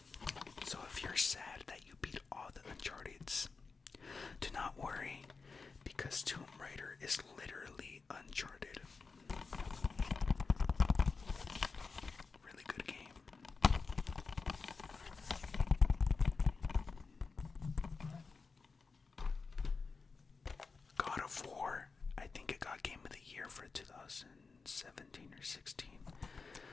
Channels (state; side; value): quieter; right; 4.6 dB